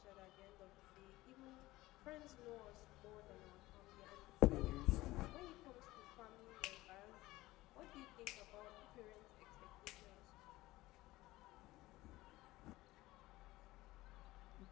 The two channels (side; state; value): right; quieter; 18.3 dB